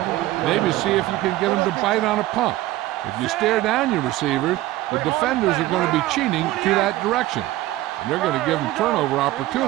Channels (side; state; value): left; quieter; 16.5 dB